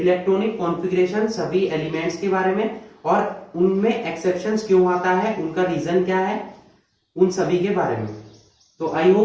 कॉन्फ़िगरेशन सभी एलिमेंट्स के बारे में, और उनमें एक्सेप्शंस क्यों आता है, उनका रीजन क्या है, उन सभी के बारे में। तो आई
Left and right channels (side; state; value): both; identical; correlation 1.00